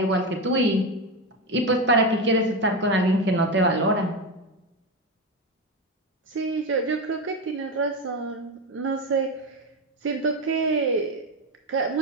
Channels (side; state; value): both; normal; correlation 0.15